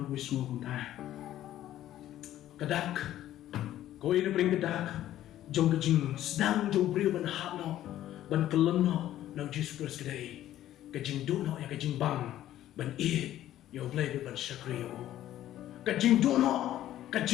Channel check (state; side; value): quieter; right; 12.9 dB